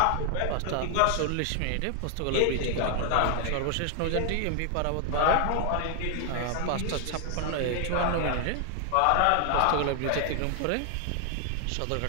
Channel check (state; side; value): different; both; correlation 0.00